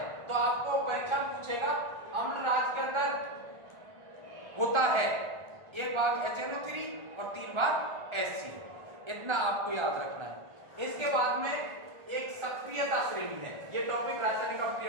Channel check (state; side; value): late; left; 1.3 ms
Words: तो आपको परीक्षा पूछेगा अम्लराज के अंदर होता है एक भाग HNO3 और 3 भाग HCl, इतना आपको याद रखना है। इसके बाद में एक सक्रियता श्रेणी है। ये टॉपिक रासायनिक